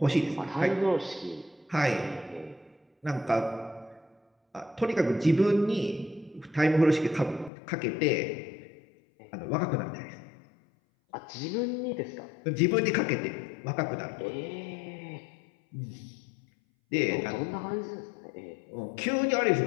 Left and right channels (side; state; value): right; drops out; at 7.5 s